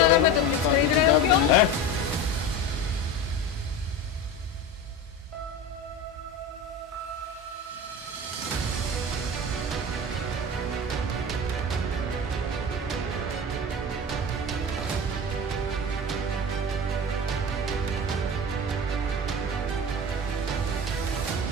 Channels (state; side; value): normal; both; correlation 0.28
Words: में तुम खरीद रहे हो क्यों? हैं?